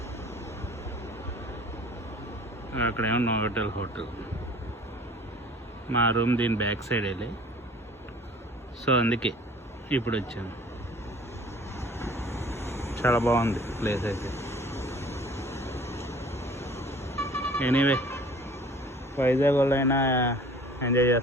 అక్కడేమో నోవోటల్ హోటల్. మా రూమ్ దీని బ్యాక్ సైడ్ వెళ్ళి, సో అందుకే ఇప్పుడు వచ్చాను. చాలా బాగుంది ప్లేస్ అయితే. ఎనీవే, వైజాగ్ వాళ్ళైనా ఎంజాయ్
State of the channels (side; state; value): both; normal; correlation 0.49